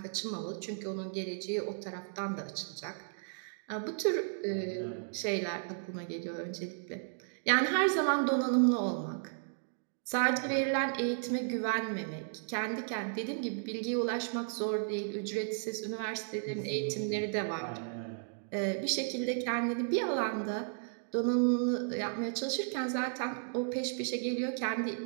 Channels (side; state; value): left; silent; digital silence